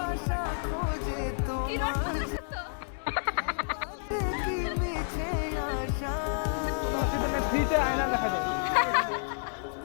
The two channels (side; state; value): right; silent; digital silence